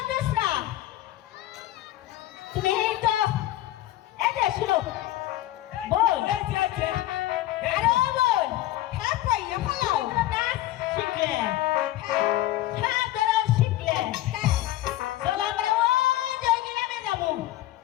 না তুমি এই তো এই যে শুনো বল এই যে আছে আরে বল হ্যাঁ কইয়া ফেলাও নাচ শিখলে হ্যাঁ ধরো শিখলে চলো আমরা ওই যে গ্রামে যাবো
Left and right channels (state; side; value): quieter; right; 15.3 dB